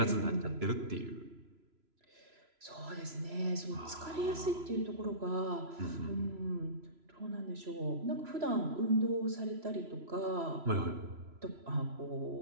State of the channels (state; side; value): late; left; 3.0 ms